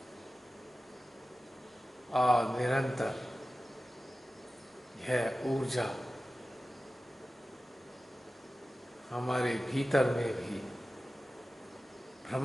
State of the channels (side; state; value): both; normal; correlation 0.95